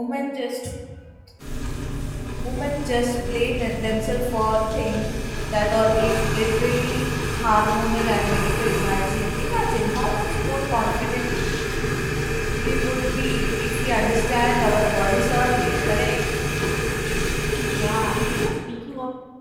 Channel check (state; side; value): identical; both; correlation 1.00